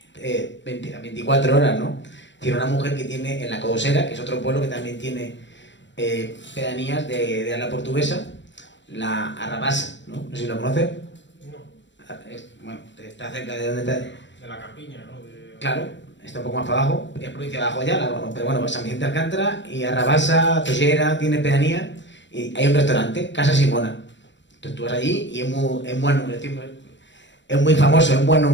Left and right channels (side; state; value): right; late; 0.53 ms